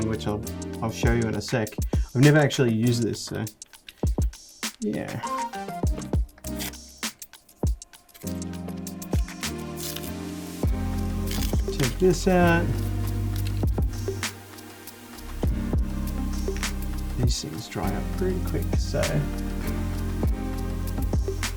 which I'll show you in a sec. I've never actually used this, so yeah. Take this out. These things dry up pretty quick, so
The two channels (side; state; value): both; identical; correlation 1.00